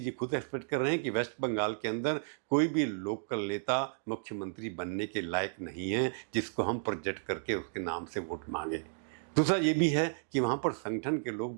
खुद एक्सपेक्ट कर रहे हैं कि वेस्ट बंगाल के अंदर कोई भी लोकल नेता मुख्यमंत्री बनने के लायक नहीं है जिसको हम प्रोजेक्ट करके उसके नाम से वोट मांगे। दूसरा ये भी है कि वहाँ पर संगठन के लोग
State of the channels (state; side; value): silent; left; digital silence